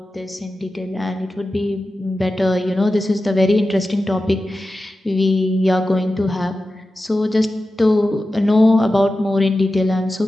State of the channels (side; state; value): both; normal; correlation 0.93